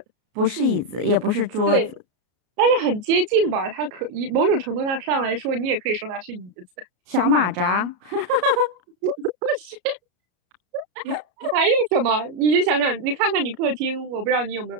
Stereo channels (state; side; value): late; left; 33 ms